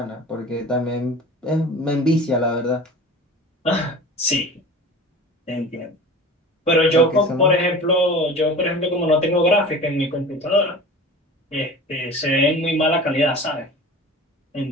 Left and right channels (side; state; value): both; normal; correlation 0.37